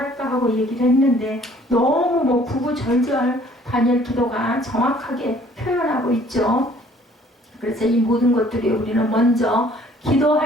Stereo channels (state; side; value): normal; both; correlation 0.57